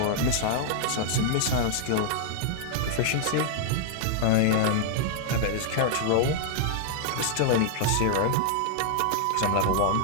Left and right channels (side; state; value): both; different; correlation -0.01